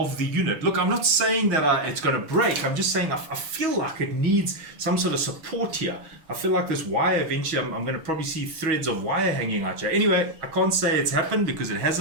the unit? Look, I'm not saying that it's going to break. I'm just saying I feel like it needs some sort of support here. I feel like this wire eventually, I'm going to probably see threads of wire hanging out here. Anyway, I can't say it's happened because it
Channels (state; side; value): late; left; 6.4 ms